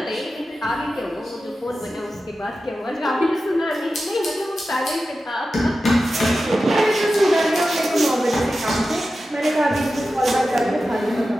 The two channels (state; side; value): normal; both; correlation 0.93